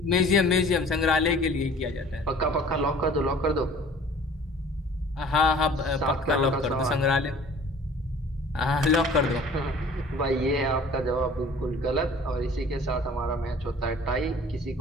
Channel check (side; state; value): both; normal; correlation 0.49